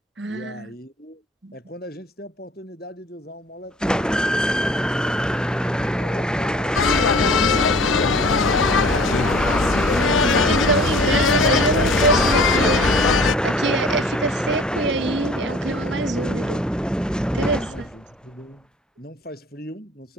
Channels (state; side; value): normal; both; correlation 0.49